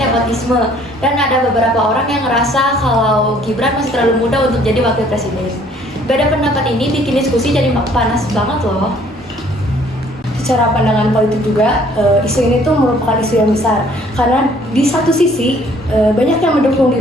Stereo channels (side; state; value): both; normal; correlation 0.59